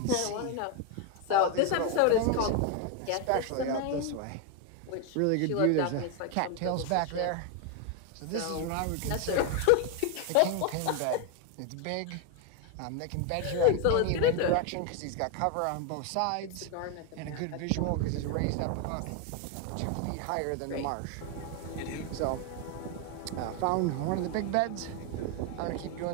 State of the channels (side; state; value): both; different; correlation 0.01